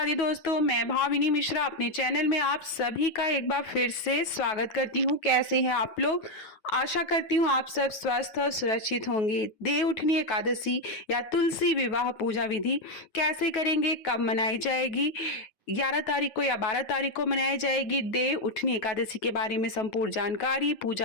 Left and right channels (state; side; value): late; right; 9.3 ms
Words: दी दोस्तों, मैं भाविनी मिश्रा अपने चैनल में आप सभी का एक बार फिर से स्वागत करती हूँ। कैसे हैं आप लोग? आशा करती हूँ आप सब स्वस्थ और सुरक्षित होंगे। देव उठनी एकादशी या तुलसी विवाह पूजा विधि कैसे करेंगे, कब मनाई जाएगी, 11 तारीख को या 12 तारीख को मनाई जाएगी देव उठनी एकादशी के बारे में संपूर्ण जानकारी,